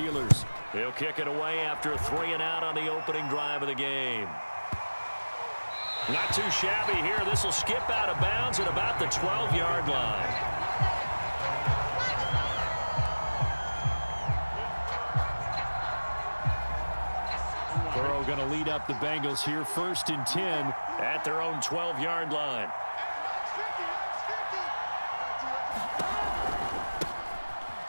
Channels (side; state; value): both; inverted; correlation -1.00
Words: He'll kick it away after a 3-and-out on the opening drive of the game. Not too shabby here. This will skip out of bounds at about the 12-yard line. Burrow going to lead up the Bengals here 1st and 10 at their own 12-yard line.